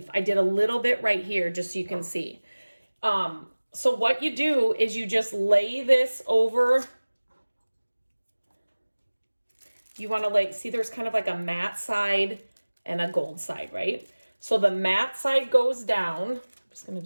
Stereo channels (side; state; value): both; inverted; correlation -1.00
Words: I did a little bit right here just so you can see. So what you do is you just lay this over. You want to see there's kind of like a matte side and a gold side, right? So the matte side goes down. I'm just going to